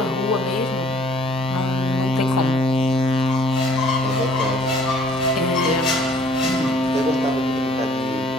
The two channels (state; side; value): normal; both; correlation 0.58